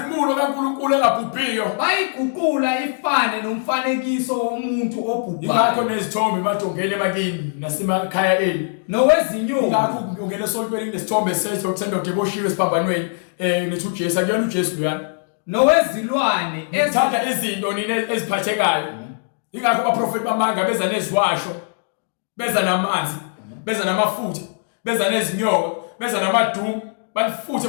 kaNkulunkulu engabhubhiyo. bayiguqula ifane nomfanekiso womuntu obhubhayo, Ingakho nezithombe emadongeni emakini nasemakhaya eni. nowezinyoni, Ingakho ungena esontweni nesithombe sesithombe deboshiwe esiphambanweni nethi uJesu akuyona uJesu luyana. nowezilwane Ezithatha izinto nini eziphathekayo. Ingakho abaprofeti bamanga beza neziwasho, beza namanzi, beza namafutha, beza nezinyoka, beza namadumu, banifuthe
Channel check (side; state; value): right; silent; digital silence